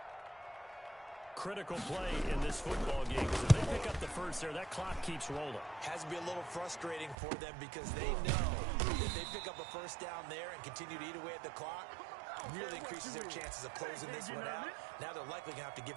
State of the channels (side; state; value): left; drops out; at 7.2 s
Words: Critical play in this football game, because if they pick up the first there, that clock keeps rolling. Has to be a little frustrating for them because they know if they pick up a first down there and continue to eat away at the clock, really increases their chances of closing this one out. Now they're likely going to have to give